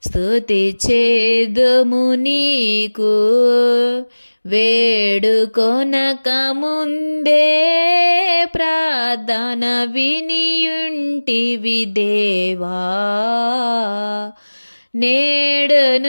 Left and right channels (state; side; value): inverted; both; correlation -1.00